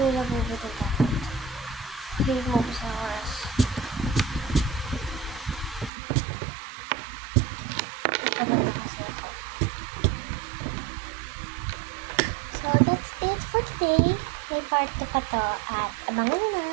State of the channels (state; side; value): drops out; left; at 5.9 s